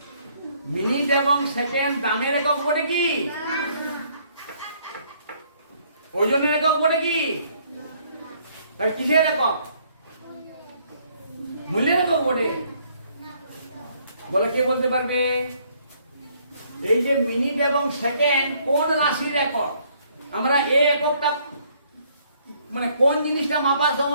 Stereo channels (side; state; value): both; inverted; correlation -0.65